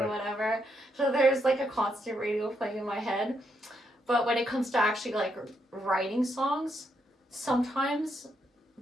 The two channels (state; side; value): normal; both; correlation 0.78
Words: whatever. So there's like a constant radio playing in my head. But when it comes to actually like writing songs, sometimes